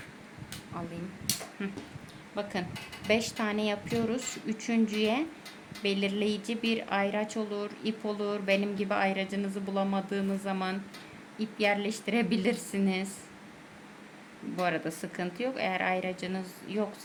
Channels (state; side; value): identical; both; correlation 1.00